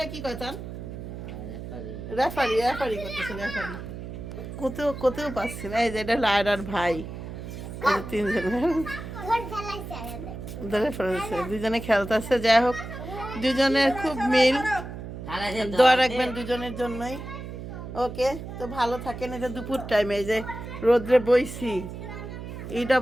কি কয় তার রেফারি রেফারি করতেছে রেফারি। কোথাও কোথাও পাচ্ছি না। এই যে এটা লায়রার ভাই, এই যে তিনজন ঘর ফেলাইছে আরে ধরে ফেলেছে, দুজনে খেলতেছে। যাই হোক দুজনের খুব মিল, দোয়া রাখবেন দুজনের জন্যই। ওকে তো ভালো থাকেন। এটা দুপুর টাইমে এই যে রোদ্রে বইছি, এইটা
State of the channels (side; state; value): right; noise; hum, 9 dB below the sound